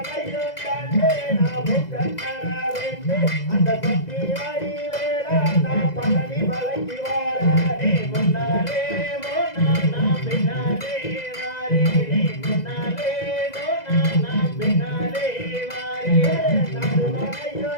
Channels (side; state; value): right; late; 2.0 ms